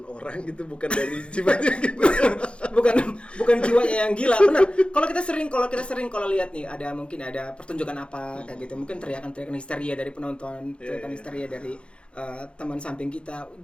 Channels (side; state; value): right; late; 0.057 ms